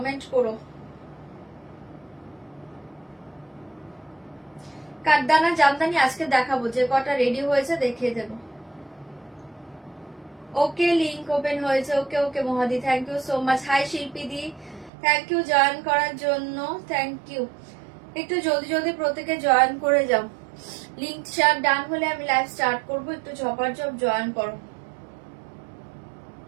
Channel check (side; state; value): left; drops out; at 14.9 s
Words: করো। কাঠদানা জামদানি আজকে দেখাবো, যে কটা রেডি হয়েছে দেখিয়ে দেব। ওকে, লিংক ওপেন হয়েছে। ওকে ওকে মহাদি, thank you so much. Hi Shilpi di, thank you join করার জন্য, থ্যাংক ইউ। একটু জলদি জলদি প্রত্যেকে জয়েন করে যাও। লিংক শেয়ার ডান হলে আমি লাইভ স্টার্ট করবো, একটু ঝপাঝপ জয়েন করো।